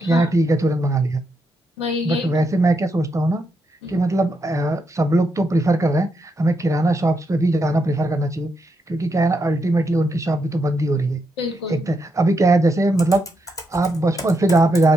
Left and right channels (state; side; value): normal; both; correlation 0.81